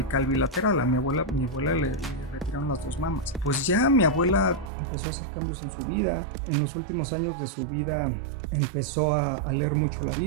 bilateral. A mi abuela le retiraron las 2 mamas. Pues ya mi abuela empezó a hacer cambios en su vida. En los últimos años de su vida empezó a leer mucho la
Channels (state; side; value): drops out; left; at 4.7 s